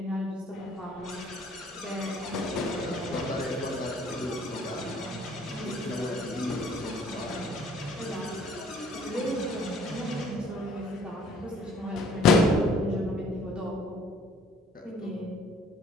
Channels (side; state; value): both; normal; correlation 0.57